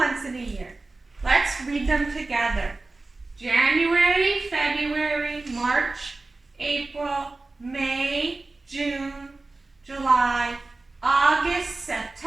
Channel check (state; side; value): quieter; left; 3.3 dB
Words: in a year. Let's read them together. January, February, March, April, May, June, July, August,